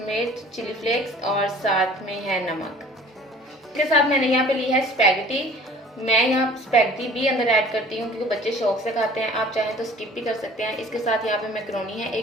चिली फ्लेक्स और साथ में है नमक। इसके साथ मैंने यहाँ पे ली है स्पैगेटी। मैं यहाँ स्पैगेटी भी अंदर ऐड करती हूँ क्योंकि बच्चे शौक से खाते हैं, आप चाहें तो स्किप भी कर सकते हैं। इसके साथ यहाँ पे मैक्रोनी है,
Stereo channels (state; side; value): normal; both; correlation 0.49